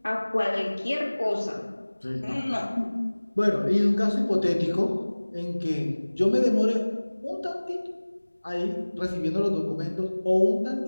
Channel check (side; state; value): both; inverted; correlation -1.00